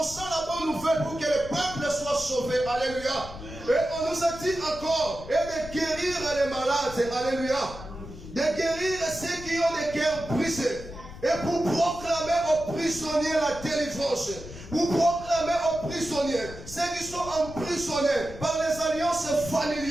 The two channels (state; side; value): noise; left; rumble, 14 dB below the sound